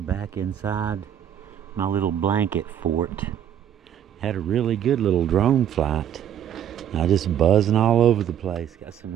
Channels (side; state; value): left; quieter; 9.9 dB